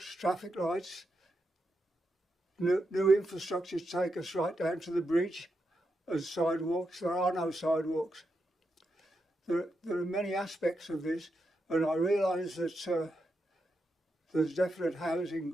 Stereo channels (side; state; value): both; normal; correlation 0.85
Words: traffic lights, new infrastructure to take us right down to the bridge as sidewalks? There are no sidewalks. There are many aspects of this, and I realise that there's definite